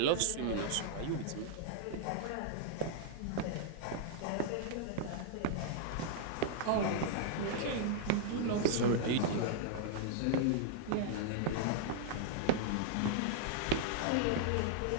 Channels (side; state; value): both; different; correlation -0.01